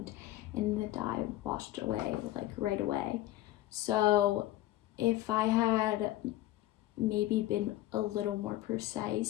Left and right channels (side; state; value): right; quieter; 15.0 dB